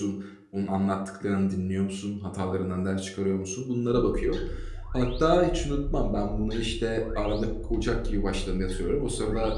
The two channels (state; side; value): identical; both; correlation 1.00